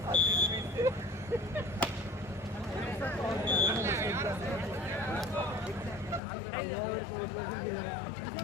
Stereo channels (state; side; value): drops out; right; at 6.2 s